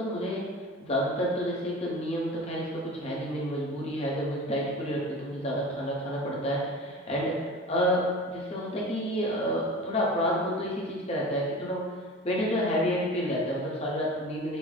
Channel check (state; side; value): normal; both; correlation 0.36